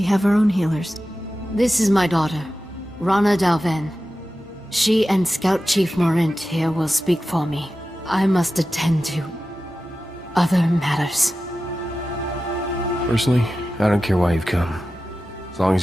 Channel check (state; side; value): normal; both; correlation 0.93